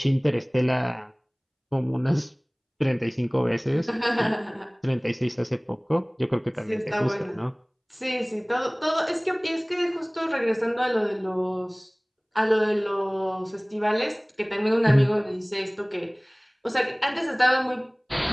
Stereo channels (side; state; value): both; identical; correlation 1.00